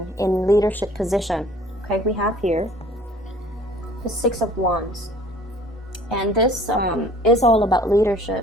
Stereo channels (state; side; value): normal; both; correlation 0.52